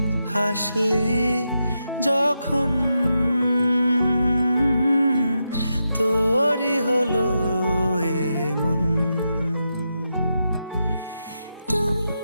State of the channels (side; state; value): both; inverted; correlation -0.86